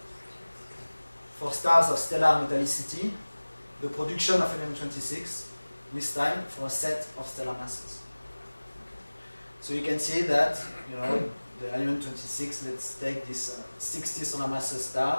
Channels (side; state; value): both; inverted; correlation -1.00